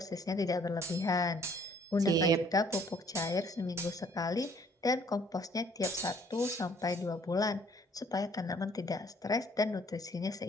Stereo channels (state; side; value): normal; both; correlation 0.60